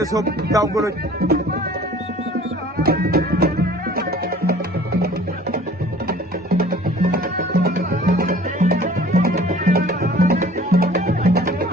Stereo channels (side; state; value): both; normal; correlation 0.49